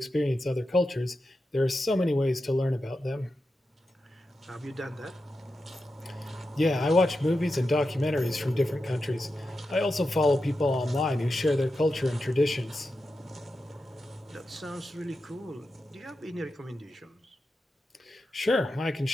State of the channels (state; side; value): normal; both; correlation 0.90